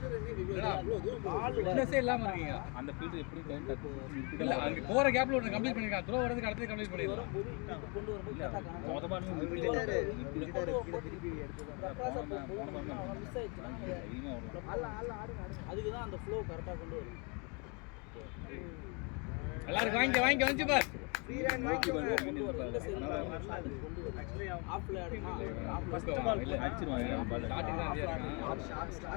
என்னடா இவ்ளோ தூரம் ஃபிட்னஸே இல்லாம இருக்கீங்க அந்த ஃபீல்ட் எப்படி டைம் இல்ல அங்க போற கேப்ல ஒன்னு கம்ப்ளீட் பண்ணிருக்கான் த்ரோ வரதுக்கு அடுத்து கம்ப்ளீட் பண்ணிடலாம் வரும்போது இங்க கொண்டு வரும்போது கரெக்டா காணோம். மொத பால் திருப்பி எடுத்து மிஸ் ஆயிடுச்சுன்னா அதுக்கு தான் அந்த ஃப்ளோ கரெக்டா கொண்டு வரும். எல்லாரும் வாங்கி வந்து பார் ஃப்ரீ ரன் வாங்கி கொண்டு வரும். இந்த சைடு கொண்டு வரும். ஆஃப்ல ஆடுனா ஃபர்ஸ்ட் பால் இல்ல அடிச்சிருவாங்க பால் ஸ்டார்டிங் தான் இருக்கான்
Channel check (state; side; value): quieter; right; 32.9 dB